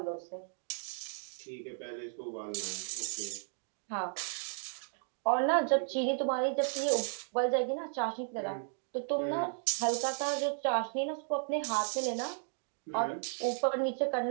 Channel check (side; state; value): left; silent; digital silence